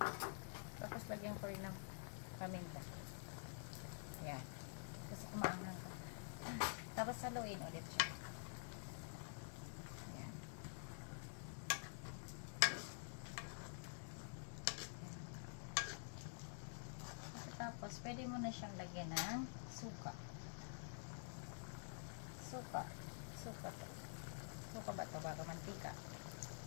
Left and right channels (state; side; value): silent; right; digital silence